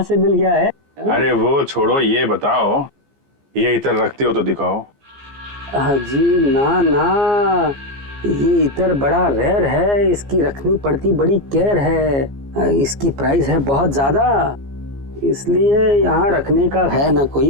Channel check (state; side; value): late; left; 15 ms